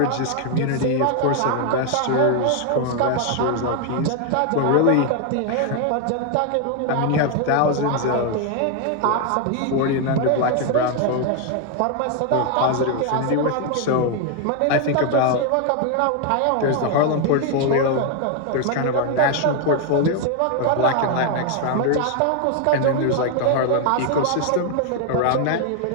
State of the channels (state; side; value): different; both; correlation 0.01